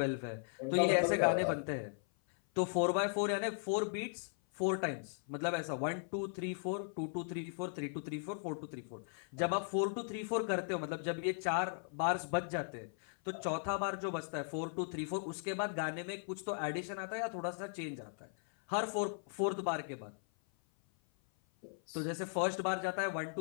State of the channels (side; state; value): right; silent; 53 dB below the other